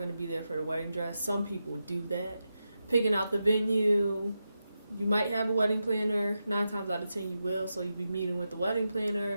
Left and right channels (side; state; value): both; inverted; correlation -0.89